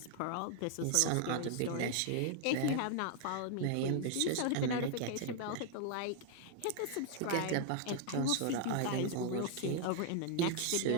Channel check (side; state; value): both; different; correlation 0.00